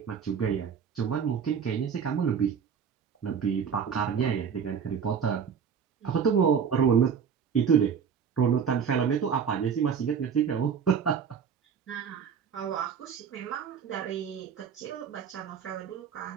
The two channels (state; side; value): quieter; left; 7.1 dB